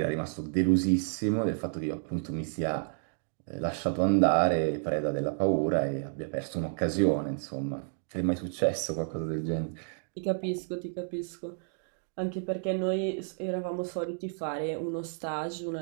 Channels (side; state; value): left; silent; digital silence